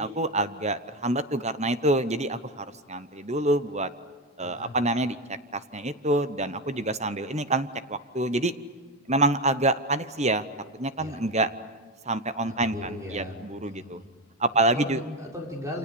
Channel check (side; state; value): both; normal; correlation 0.15